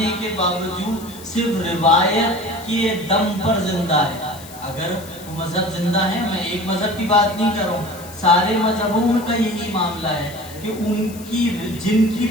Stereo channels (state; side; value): noise; left; hiss, 18 dB below the sound